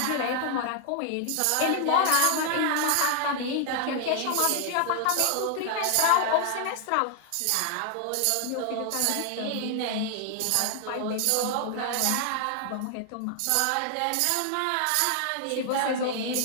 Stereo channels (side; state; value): both; different; correlation 0.00